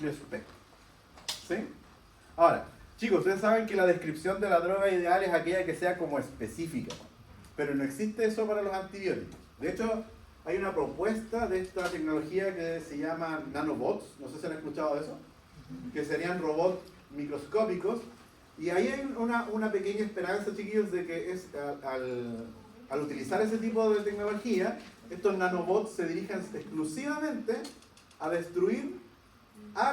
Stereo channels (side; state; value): both; identical; correlation 1.00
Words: espectro. ¿Sí? Ahora, chicos, ustedes saben que la descripción de la droga ideal es aquella que sea como específica, pero no existe eso para los antibióticos. De hecho, hay una propuesta de esta tecnología que se llama nanobots, no sé si han escuchado de eso, que serían robots microscópicos, y ahí hay una pequeña esperanza, chiquillos, de que al utilizar ese tipo de tecnología, estos nanobots se dirigen exclusivamente a destruir a